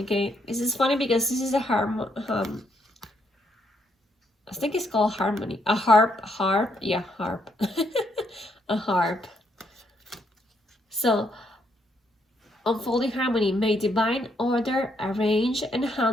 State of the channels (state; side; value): normal; both; correlation 0.74